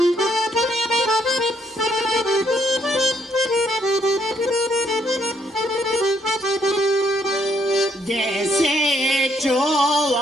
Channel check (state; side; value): normal; both; correlation 0.71